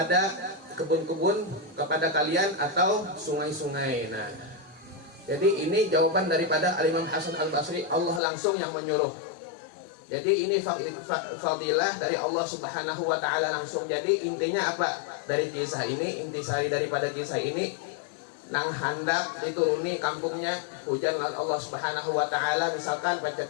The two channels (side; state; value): right; drops out; at 8.2 s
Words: kebun-kebun kepada kalian atau sungai-sungai. Nah, jadi ini jawaban daripada Al-Imam Hasan Al-Basri, Allah langsung yang menyuruh. Jadi ini fadilah dari Allah Subhanahu wa ta'ala langsung. Jadi intinya apa dari kisah ini? Intisari daripada kisah ini, nang hendak dituruni kampungnya hujan Allah Subhanahu wa ta'ala, misalkan